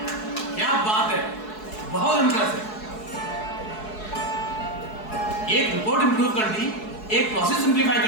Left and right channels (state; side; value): late; right; 4.7 ms